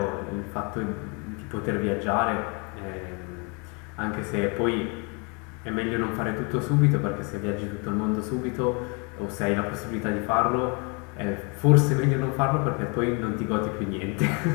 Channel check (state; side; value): quieter; right; 32.9 dB